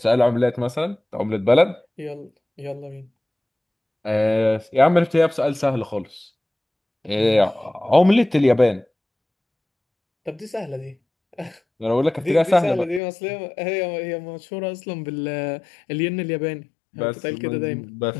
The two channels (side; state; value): right; drops out; at 13.0 s